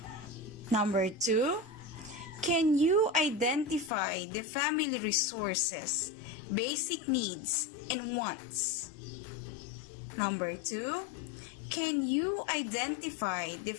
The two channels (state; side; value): drops out; right; at 3.9 s